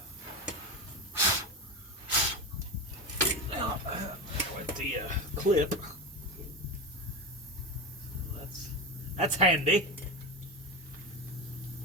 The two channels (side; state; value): both; normal; correlation 0.20